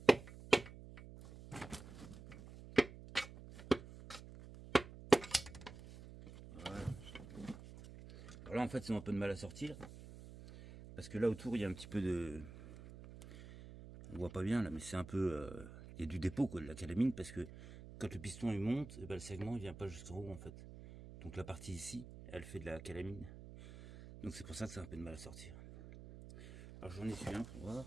Voilà. Alors là, en fait, ils ont un peu de mal à sortir. Parce que là, autour, il y a un petit peu de... On voit pas bien, là, mais c'est un peu... Il y a du dépôt, quoi, de la calamine, parce que quand le piston, il monte, et ben, le segment, il vient pas jusqu'en haut, en fait. Donc la partie ici, elle fait de la calamine. Donc c'est pour ça que ça a un peu de mal à sortir. Alors j'en ai su un pour voir.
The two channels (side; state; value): right; noise; hum, 14 dB below the sound